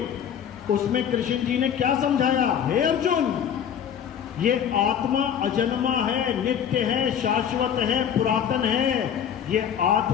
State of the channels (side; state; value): right; quieter; 8.7 dB